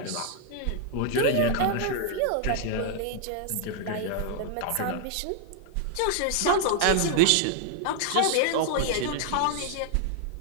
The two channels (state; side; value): different; both; correlation 0.00